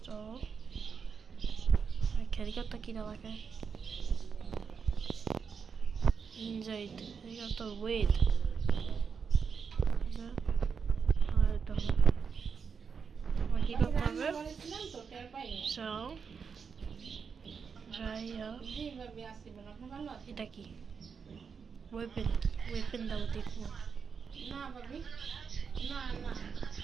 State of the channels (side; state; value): left; quieter; 6.0 dB